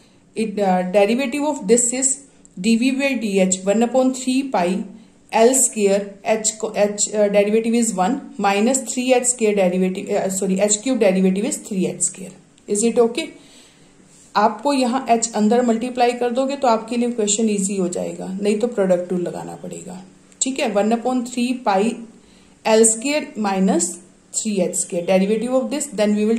derivative of this is dv by dh 1 upon 3 pi l square h derivative is 1 minus 3h square derivative h cube derivative is 3h square. Is it okay? आपको यहाँ h अंदर multiply कर दोगे तो आपके लिए question easy हो जाएगा, नहीं तो प्रोडक्ट रूल लगाना पड़ेगा. ठीक है. 1 upon 3 pi l square minus 3h square derivative of this, then we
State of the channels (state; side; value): identical; both; correlation 1.00